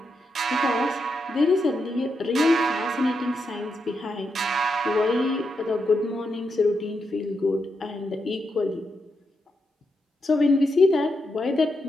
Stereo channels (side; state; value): both; normal; correlation 0.84